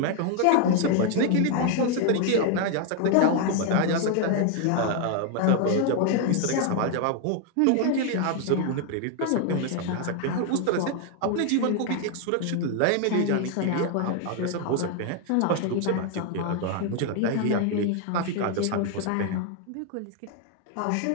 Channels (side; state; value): both; different; correlation 0.00